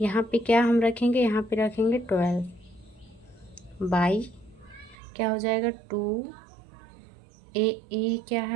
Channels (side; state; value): left; drops out; at 5.0 s